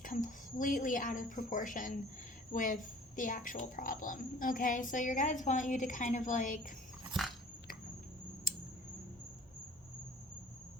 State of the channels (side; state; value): both; normal; correlation 0.49